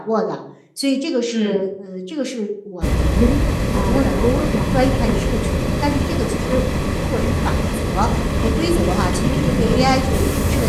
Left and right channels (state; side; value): identical; both; correlation 1.00